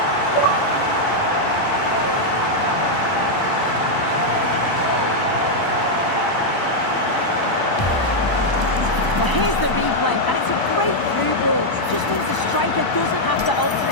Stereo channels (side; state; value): right; late; 1.0 ms